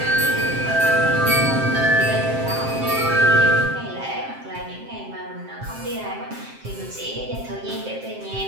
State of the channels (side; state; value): left; late; 7.6 ms